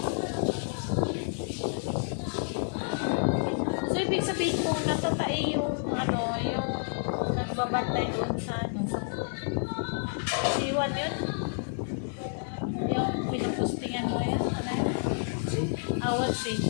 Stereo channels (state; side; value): silent; right; 56 dB below the other